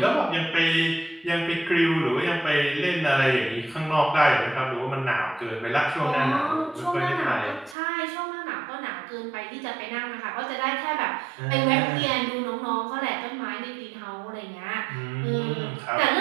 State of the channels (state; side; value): drops out; left; at 7.8 s